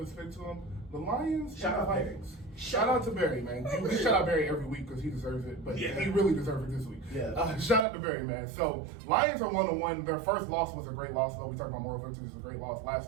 us pick to them. The Lions. Shout out Barry. Shout out to Barry, man. We shout out Barry every week because he deserves it, but he really deserved it this week. Yeah. Shout out to Barry, man. So Lions are 1-1. Their first loss was a great loss, though. We talked about moral victories. It was a great loss.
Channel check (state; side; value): drops out; left; at 7.9 s